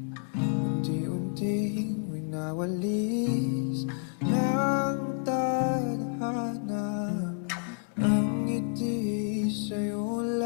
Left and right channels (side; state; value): right; silent; 58 dB below the other